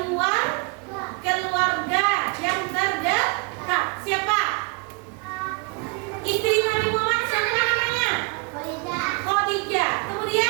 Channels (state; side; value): quieter; left; 31.9 dB